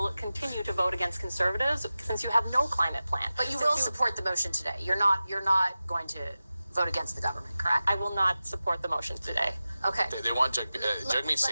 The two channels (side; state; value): both; inverted; correlation -0.95